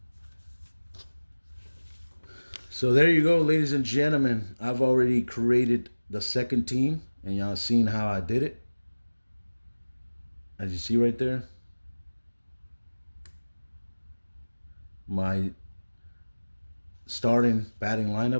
So there you go, ladies and gentlemen. I've already created the second team, and y'all seen how I did it. As you see right there, my starting batting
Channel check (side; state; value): both; inverted; correlation -1.00